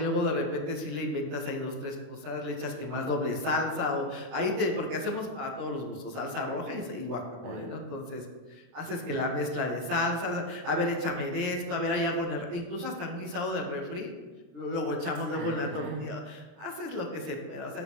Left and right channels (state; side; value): late; left; 27 ms